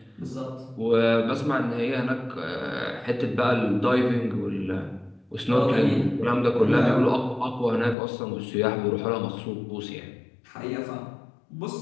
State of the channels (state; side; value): drops out; right; at 8.0 s